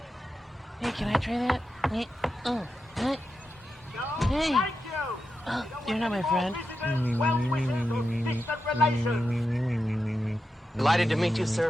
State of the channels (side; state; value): both; normal; correlation 0.88